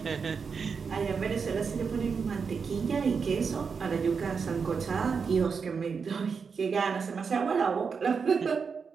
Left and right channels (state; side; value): quieter; left; 5.7 dB